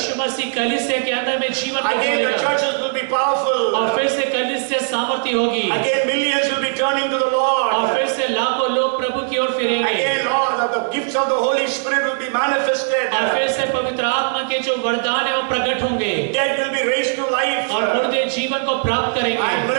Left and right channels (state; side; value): silent; left; digital silence